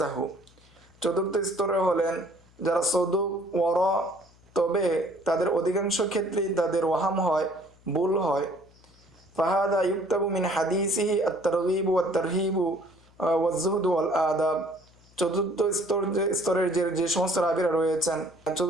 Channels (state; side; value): noise; left; hum, 28 dB below the sound